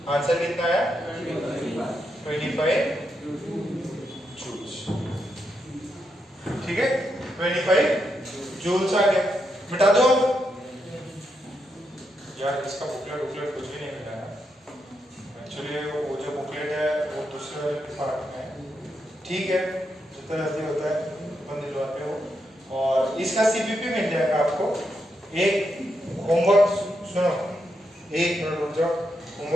आंसर कितना आया? 25 जूल्स। ठीक है, 25 जूल्स आ गया। मिटा दो यार, इसका बुकलेट कुछ भी नहीं मिला है एक्चुअली। वो जो बुकलेट है वो दूसरे पार्ट में है। ठीक है, जितना जल्दी होता है अपन दिलवाते हो, और इसका सीपीपी मिल जाएगा आपको। एक होमवर्क सुनो, एक मिनट रुक जाओ,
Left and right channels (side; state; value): both; normal; correlation 0.82